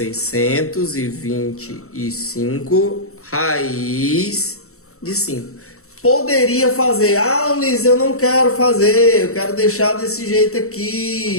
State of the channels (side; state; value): right; late; 0.64 ms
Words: raiz de 5. Poderia fazer. Ah, Ulisses, eu não quero fazer. Eu quero deixar desse jeito